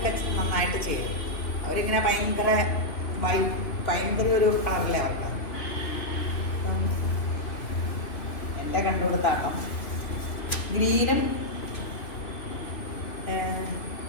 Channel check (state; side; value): late; right; 3.2 ms